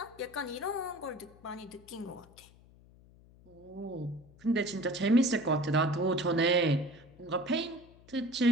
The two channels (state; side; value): noise; left; hum, 25 dB below the sound